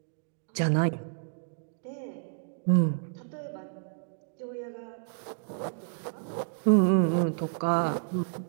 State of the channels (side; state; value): left; silent; digital silence